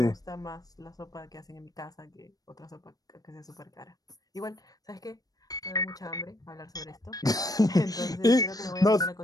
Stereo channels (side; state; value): right; late; 0.18 ms